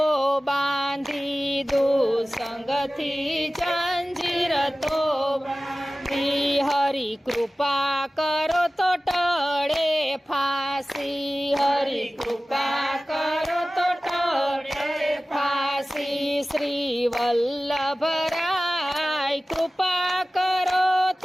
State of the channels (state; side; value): normal; both; correlation 0.96